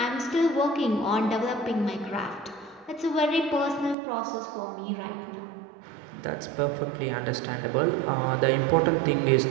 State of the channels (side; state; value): left; drops out; at 4.0 s